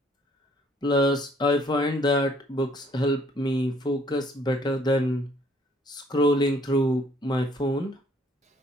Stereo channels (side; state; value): both; normal; correlation 0.62